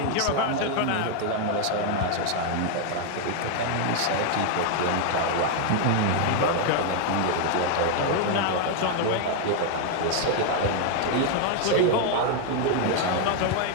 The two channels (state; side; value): different; both; correlation 0.00